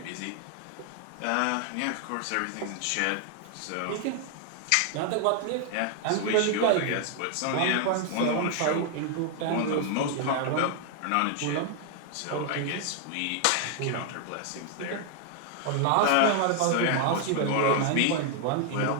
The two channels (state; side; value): different; both; correlation 0.00